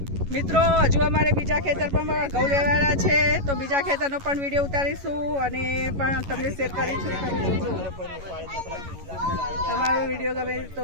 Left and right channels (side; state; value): left; late; 11 ms